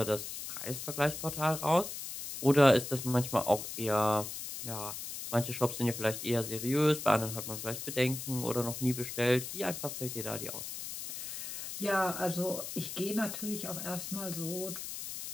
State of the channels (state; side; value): noise; left; hiss, 7 dB below the sound